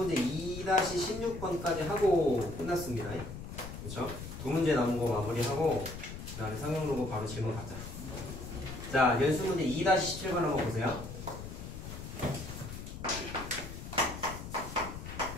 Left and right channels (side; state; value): left; noise; rumble, 10 dB below the sound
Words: 2-16번까지 하고 끝났습니다. 그쵸? 두 문제 남은 거 마무리하고 그 다음에 상용 로고 바로 질문 가자. 자, 연습문제 2-17번 한번 보세요.